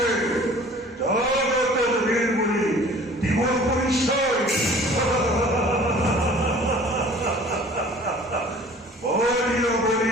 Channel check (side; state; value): both; normal; correlation 0.48